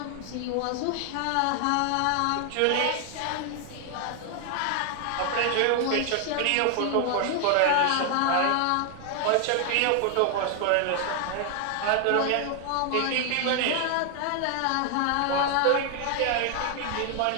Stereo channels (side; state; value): both; different; correlation 0.00